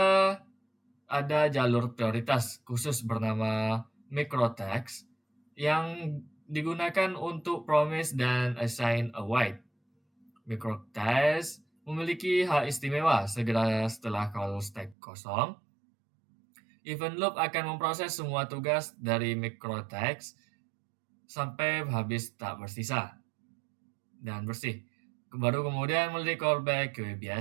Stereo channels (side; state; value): left; drops out; at 15.0 s